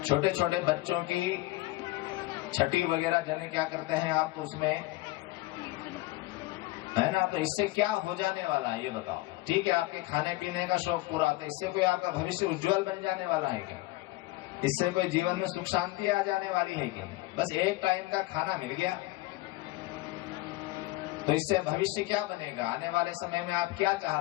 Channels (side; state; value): right; quieter; 19.5 dB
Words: छोटे छोटे बच्चों की छठी वगैरह जने क्या करते हैं आप, तो उसमें है ना, तो इससे क्या हो जाने वाला है ये बताओ। ठीक है, आपके खाने पीने का शौक पूरा होता है, इससे कोई आपका भविष्य उज्जवल बन जाने वाला है क्या? इससे कोई जीवन में सुख शांति आ जाने वाली है क्या? बस एक टाइम का खाना मिल गया, तो इससे भविष्य क्या बनेगा? आने वाले समय में आप क्या